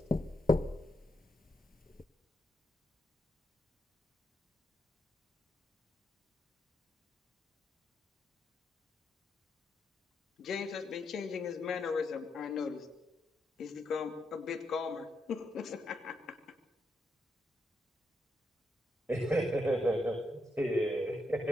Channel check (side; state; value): both; normal; correlation 0.81